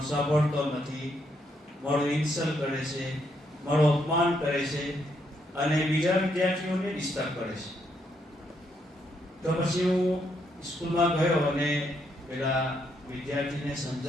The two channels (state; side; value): normal; both; correlation 0.76